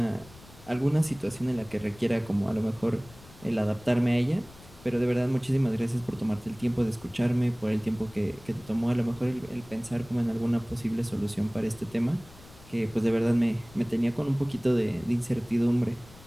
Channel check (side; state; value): left; noise; rumble, 21 dB below the sound